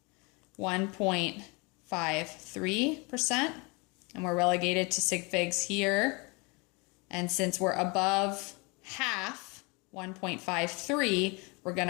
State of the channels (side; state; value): right; quieter; 29.0 dB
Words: 1.53%. And we're relegated to sig figs here. And since we're above half, 1.53, we're going